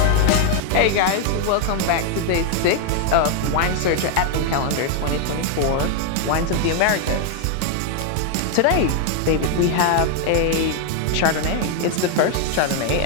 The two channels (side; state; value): both; different; correlation 0.00